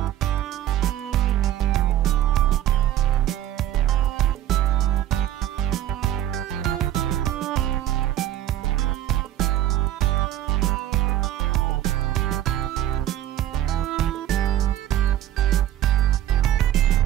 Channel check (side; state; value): left; quieter; 12.5 dB